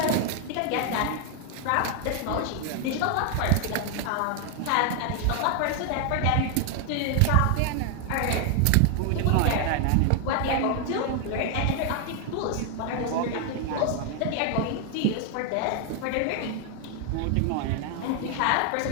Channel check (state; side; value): different; both; correlation 0.00